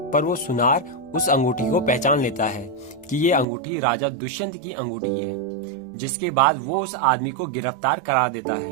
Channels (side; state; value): left; drops out; at 3.5 s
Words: पर वो सुनार उस अंगूठी को पहचान लेता है कि ये अंगूठी राजा दुष्यंत की अंगूठी है, जिसके बाद वो उस आदमी को गिरफ्तार करा देता